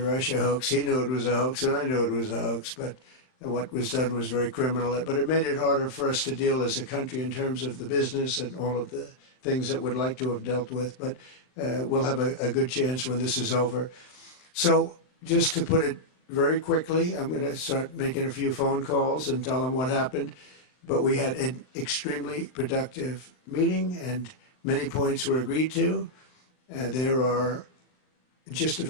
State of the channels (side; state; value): right; late; 39 ms